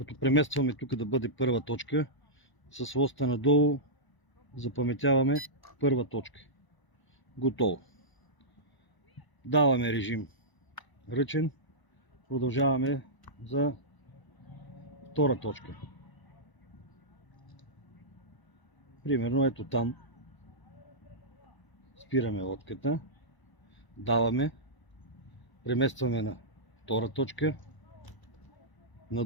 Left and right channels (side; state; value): right; late; 1.0 ms